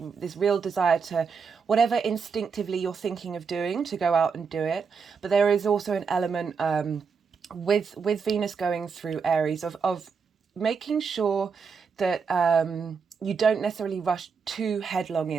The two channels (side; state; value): left; quieter; 5.7 dB